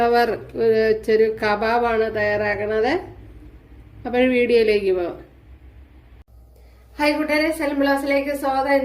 വെച്ചൊരു കബാബാണ് തയ്യാറാക്കുന്നത്. അപ്പോൾ വീഡിയോയിലേക്ക് പോവാം. ഹായ് കൂട്ടുകാരെ, സലം ബ്ലോസിലേക്ക് സ്വാഗതം.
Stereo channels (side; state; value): both; identical; correlation 1.00